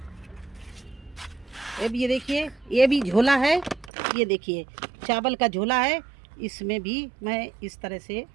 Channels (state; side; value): drops out; left; at 3.9 s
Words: अब ये देखिए ये भी झोला है, ये देखिए चावल का झोला है, इसमें भी मैं इस तरह से